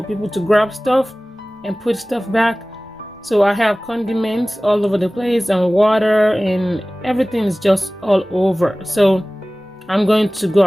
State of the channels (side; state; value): both; normal; correlation 0.98